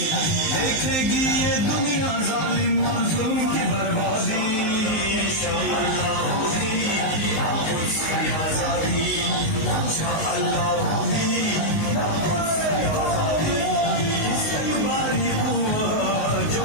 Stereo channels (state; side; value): late; right; 19 ms